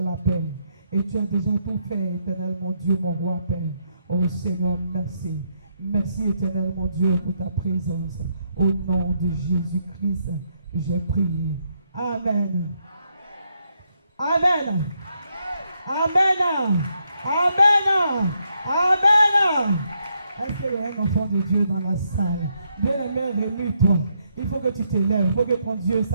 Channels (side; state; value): both; inverted; correlation -0.77